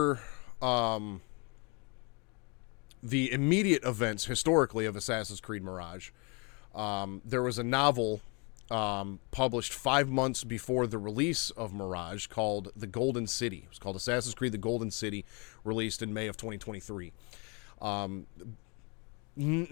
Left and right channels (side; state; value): right; quieter; 32.0 dB